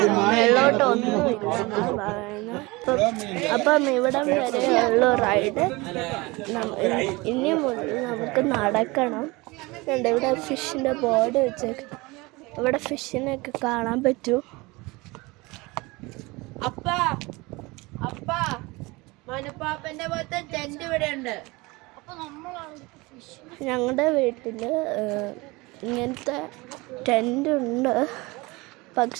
മേലോട്ട് ഒന്നുമില്ല. അപ്പം ഇവിടം വരെയുള്ള റൈഡ് ഇനി മുതൽ നമുക്ക് നടക്കണം. ഇവിടെ ഫിഷിന്റെ ബോർഡ് വെച്ചേക്ക്. ഇവിടെ ഫിഷിനൊക്കെ കാണാൻ പറ്റും. മനുപ്പാപ്പന്റെ പോലത്തെ ടെന്റ് ഇവിടെ ഉണ്ട്. ഞങ്ങളുടെ വീട്ടിൽ ഇങ്ങനത്തെ ടെൻ്റ് ഉണ്ട്,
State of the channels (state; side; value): quieter; left; 23.6 dB